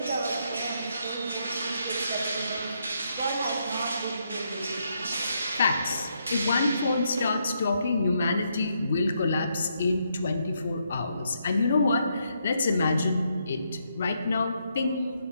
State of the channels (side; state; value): both; inverted; correlation -0.77